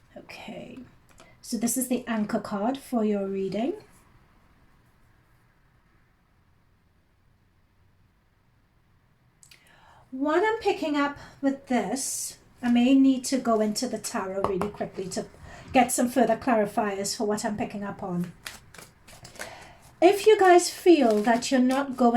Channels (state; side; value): identical; both; correlation 1.00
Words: Okay. So this is the anchor card for your reading. What I'm picking up with this, I may need to go into the tarot really quickly to get some further clarifiers for what I'm picking up on. If you guys feel that you're not